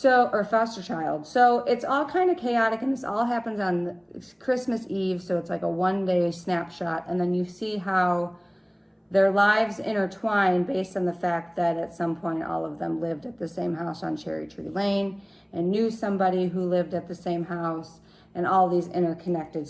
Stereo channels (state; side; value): identical; both; correlation 1.00